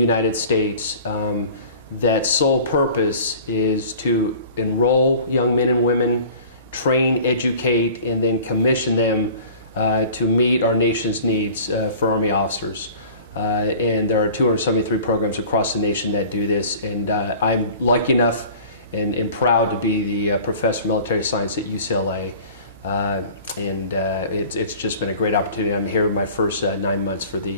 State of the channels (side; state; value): both; inverted; correlation -0.44